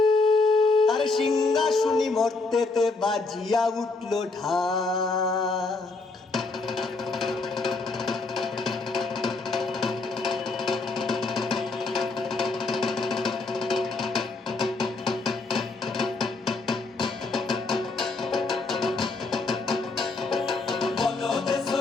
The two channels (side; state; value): right; quieter; 3.7 dB